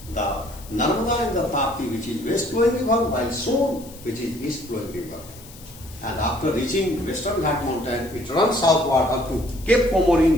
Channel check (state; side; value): noise; left; hiss, 19 dB below the sound